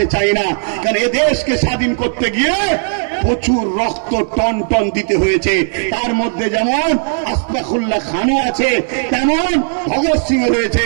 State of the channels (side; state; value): left; silent; digital silence